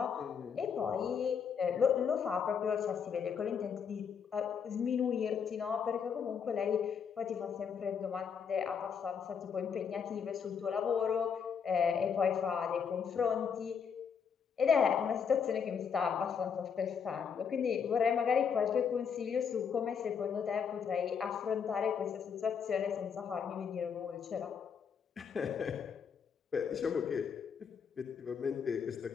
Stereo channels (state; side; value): quieter; right; 6.8 dB